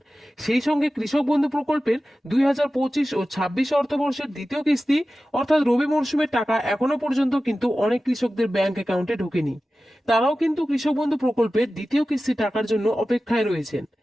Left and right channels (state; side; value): normal; both; correlation 0.95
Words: সেই সঙ্গে কৃষক বন্ধু প্রকল্পের 2025 ও 26 অর্থবর্ষের দ্বিতীয় কিস্তি অর্থাৎ রবি মরশুমের টাকা এখনো পর্যন্ত কিন্তু অনেক কৃষকদের ব্যাংক অ্যাকাউন্টে ঢোকেনি। তারাও কিন্তু কৃষক বন্ধু প্রকল্পের দ্বিতীয় কিস্তির টাকার জন্য অপেক্ষায় রয়েছেন।